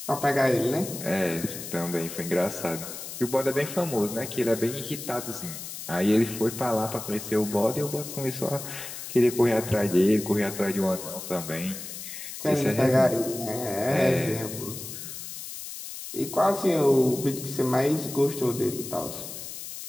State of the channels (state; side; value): noise; left; hiss, 9 dB below the sound